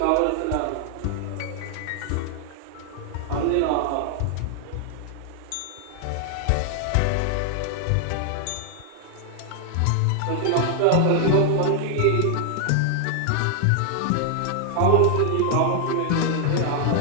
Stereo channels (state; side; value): different; both; correlation 0.00